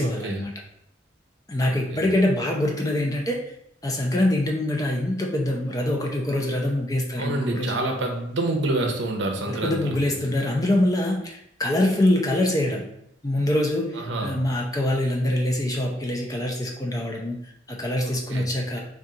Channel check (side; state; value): both; normal; correlation 0.74